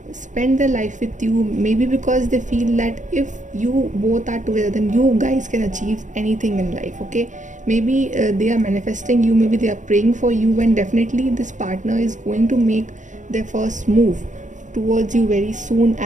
spend their life with you, maybe because they feel that if you both are together, then you guys can achieve anything in life. Okay, maybe they are manifesting you, maybe they are praying for you, and definitely this partner is going to make their first move towards you very soon.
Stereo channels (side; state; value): left; late; 0.36 ms